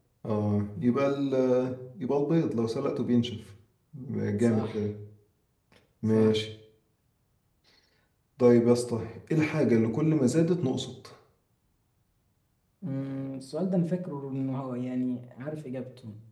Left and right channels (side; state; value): both; identical; correlation 1.00